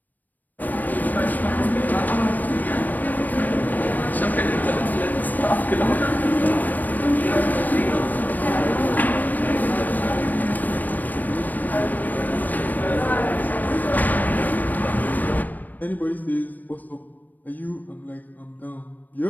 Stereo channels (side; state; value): right; late; 0.085 ms